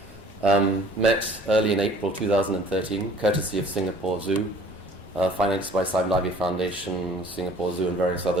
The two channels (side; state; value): both; normal; correlation 0.52